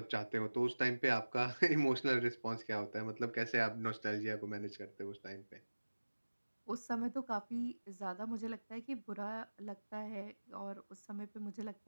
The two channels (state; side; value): inverted; both; correlation -1.00